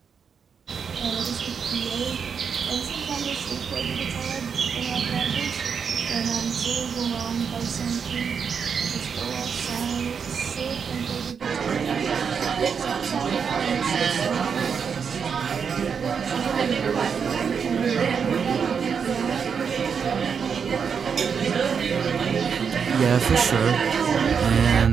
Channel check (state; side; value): quieter; left; 6.5 dB